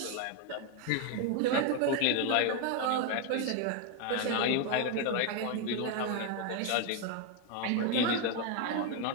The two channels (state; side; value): different; both; correlation 0.01